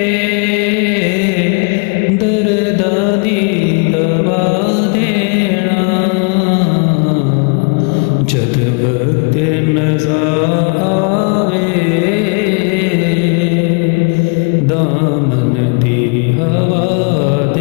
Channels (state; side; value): quieter; right; 35.0 dB